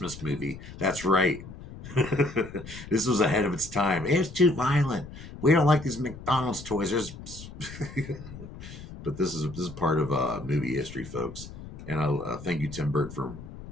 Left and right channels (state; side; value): noise; left; rumble, 14 dB below the sound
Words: movie? That's right. This was ahead of its time. It was too violent. We don't like these McDonald's toys. But this is part of movie history, folks. And I thank you, Tim Burton, for